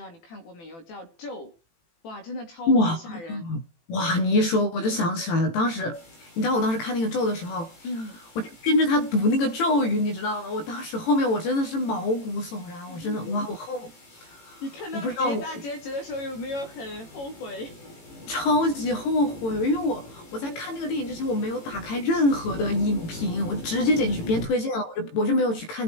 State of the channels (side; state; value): right; late; 18 ms